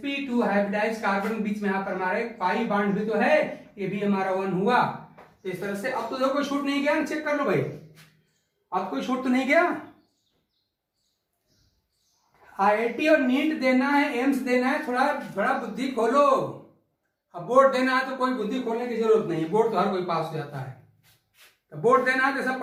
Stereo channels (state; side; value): identical; both; correlation 1.00